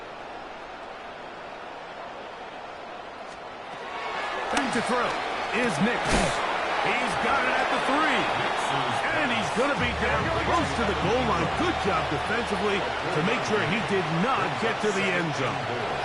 Back to throw is Nick. He's got it at the 3. And he's going to be down close to the goal line. Good job defensively to make sure he did not get to the end zone.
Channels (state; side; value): identical; both; correlation 1.00